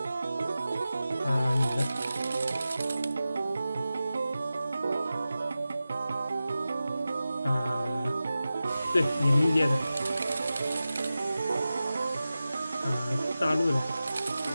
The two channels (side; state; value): both; inverted; correlation -0.94